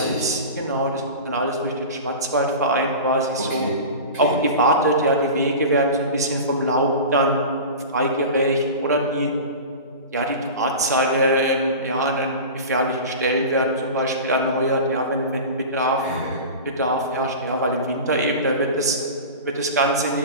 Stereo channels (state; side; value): inverted; both; correlation -0.32